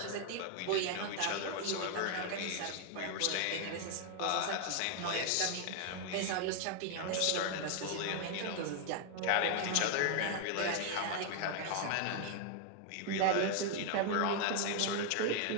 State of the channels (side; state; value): both; different; correlation 0.00